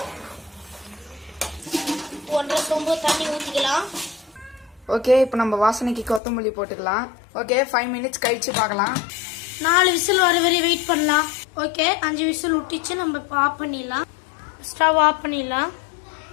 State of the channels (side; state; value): right; drops out; at 6.2 s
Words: ஒன்றரை சொம்பு தண்ணி ஊற்றிக்கலாம். ஓகே, இப்போ நம்ம வாசனைக்கு கொத்தமல்லி போட்டுக்கலாம். ஓகே, 5 மினிட்ஸ் கழிச்சு பார்க்கலாம். 4 விசில் வர வரை வெயிட் பண்ணலாம். ஓகே, 5 விசில் விட்டுச்சு. நம்ம இப்போ ஆஃப் பண்ணிடலாம். ஸ்டவ் ஆஃப் பண்ணிடலாம்.